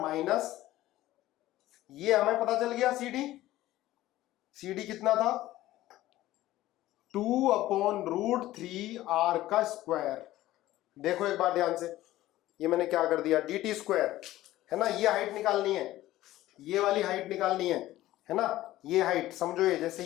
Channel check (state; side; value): quieter; right; 15.5 dB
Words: माइनस, ये हमें पता चल गया CD कितना था, 2/√3R का स्क्वायर। देखो एक बार ध्यान से, ये मैंने क्या कर दिया, dt², है ना, ये हाइट निकालनी है, ये वाली हाइट निकालनी है ना, ये हाइट समझो, ये जैसे